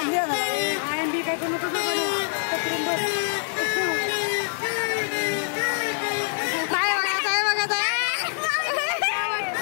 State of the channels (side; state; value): right; silent; 62 dB below the other